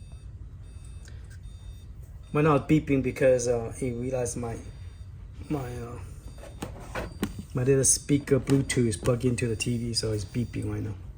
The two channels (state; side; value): identical; both; correlation 1.00